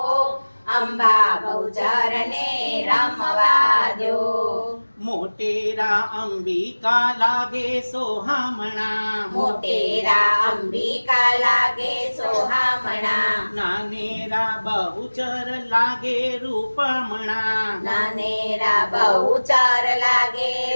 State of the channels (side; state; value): both; inverted; correlation -1.00